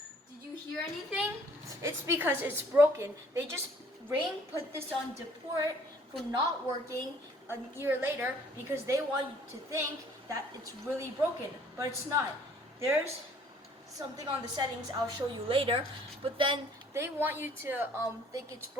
Did you hear anything? It's because it's broken. They just put this on deport for not working a year later because they want you to think that it's really broken, but it's not. There's something on the settings I'll show you later, but then they want you to think it's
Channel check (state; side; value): normal; both; correlation 0.58